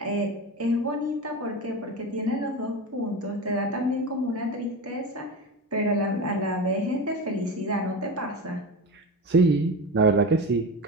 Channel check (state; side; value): normal; both; correlation 0.25